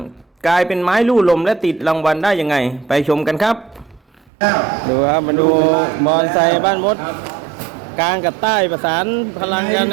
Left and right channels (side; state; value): left; drops out; at 4.2 s